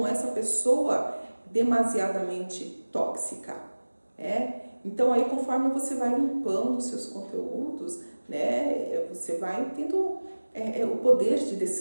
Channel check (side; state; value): both; inverted; correlation -1.00